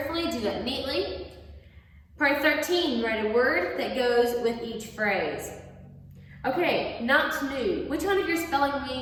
do that neatly. Part 13, write a word that goes with each phrase. Okay, not new. Which one of your spelling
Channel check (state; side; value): identical; both; correlation 1.00